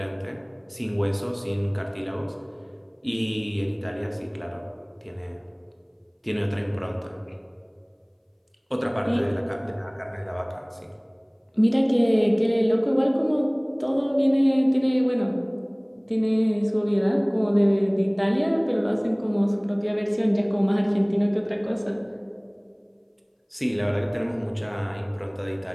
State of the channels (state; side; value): identical; both; correlation 1.00